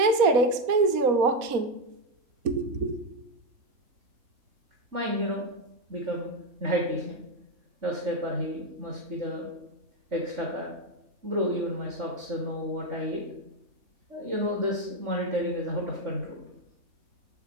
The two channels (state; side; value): late; left; 4.1 ms